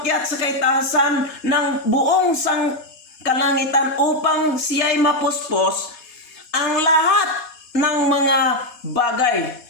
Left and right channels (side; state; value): right; late; 4.2 ms